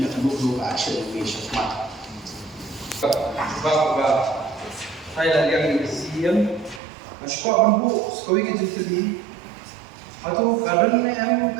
yang dulu action ini syarat sebab Thailand yang siam Mashko banbu sekolah kita jadi, atau kadang ni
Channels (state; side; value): drops out; left; at 6.8 s